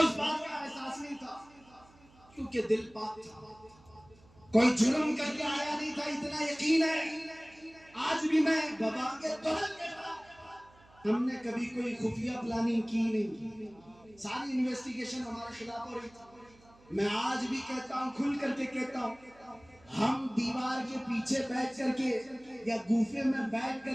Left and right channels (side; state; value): right; noise; hum, 27 dB below the sound